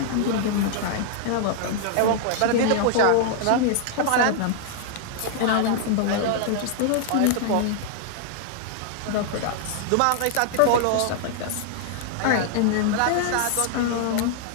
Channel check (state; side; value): different; both; correlation -0.01